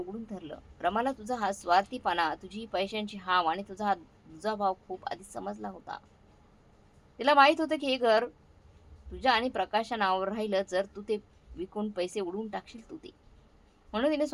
धरलं. रमाला तुझा हा स्वार्थीपणा, तुझी पैशांची हाव आणि तुझा हा दुजाभाव खूप आधी समजला होता. तिला माहीत होतं की हे घर तुझ्या आणि प्रकाशच्या नावावर राहिलं जर तू ते विकून पैसे उडवून टाकशील तू ते. म्हणून तिने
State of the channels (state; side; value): identical; both; correlation 1.00